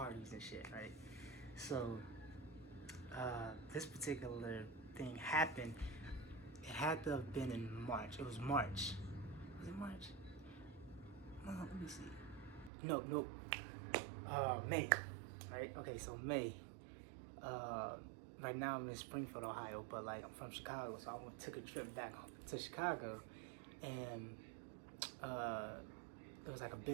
and shit, right? So this particular thing happened. It had to have been in March. It was March. Was it March? Let me see. Nope. May. Right? Okay, so May. Right now I'm in Springfield, Ohio, but like I'm from Chicago, so I took a trip back to Chicago, and it was like a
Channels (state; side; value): drops out; left; at 12.7 s